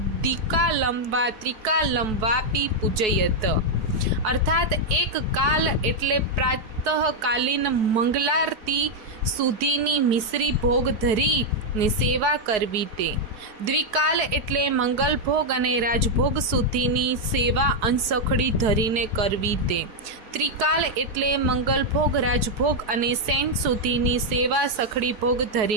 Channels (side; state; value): left; late; 4.7 ms